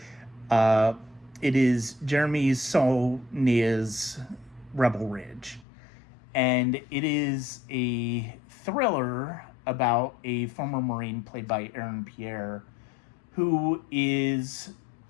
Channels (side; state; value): right; drops out; at 5.7 s